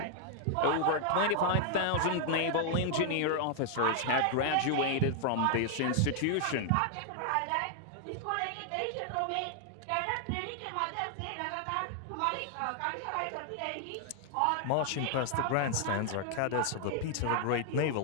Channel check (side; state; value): both; different; correlation 0.00